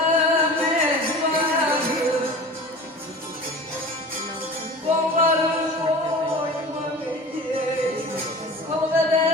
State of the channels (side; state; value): both; normal; correlation 0.37